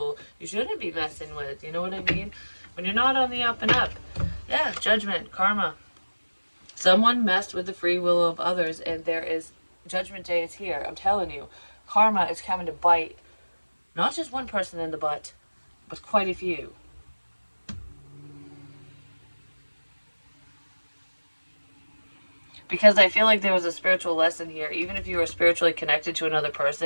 you shouldn't be messing with. You know what I mean? When you're not on the up and up. Yeah, judgment, karma. Someone messed with the free will of others, and there is judgment day is here. I'm telling you, karma is coming to bite not just one person in the butt, but quite a few. Because I feel like there was a spiritual lesson here. Even if you were spiritually connected to another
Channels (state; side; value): inverted; both; correlation -1.00